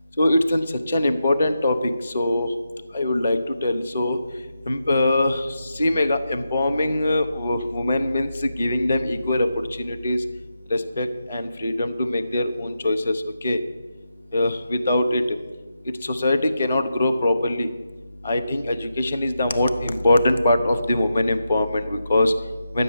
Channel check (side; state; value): both; inverted; correlation -0.87